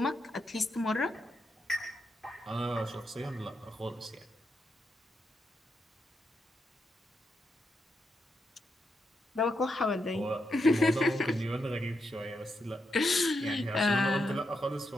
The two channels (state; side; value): normal; both; correlation 0.83